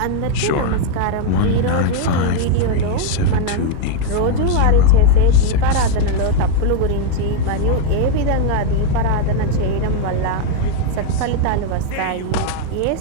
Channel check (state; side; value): different; both; correlation 0.00